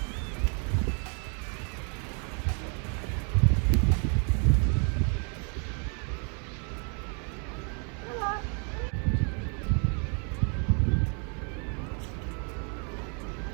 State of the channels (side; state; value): left; quieter; 38.9 dB